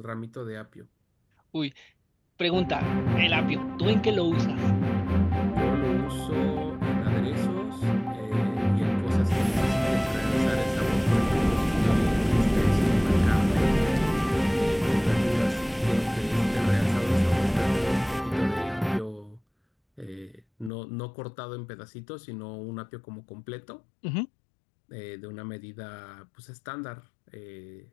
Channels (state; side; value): drops out; right; at 20.7 s